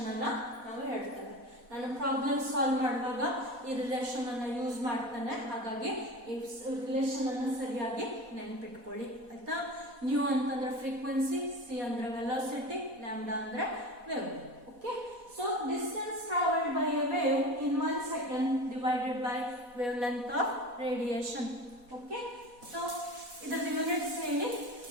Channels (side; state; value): left; late; 4.1 ms